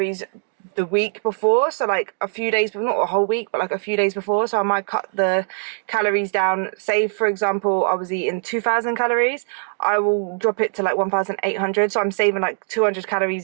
the week before. So like a few days, but not a whole week, but like a few days before. So I might cut the calories down. Say, for example, I was eating 2,000 calories. I will drop it to like 1,800. So I'm saving like 200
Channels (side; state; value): left; silent; digital silence